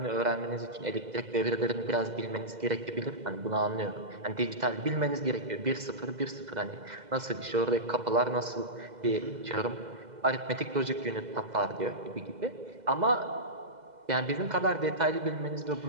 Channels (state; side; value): late; left; 2.0 ms